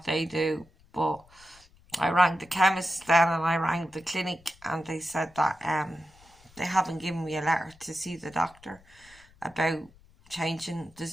they do. But I rang the chemist then, and I rang the clinic, and they said that they haven't given me a letter to see the doctor about changing.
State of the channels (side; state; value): left; noise; rumble, 27 dB below the sound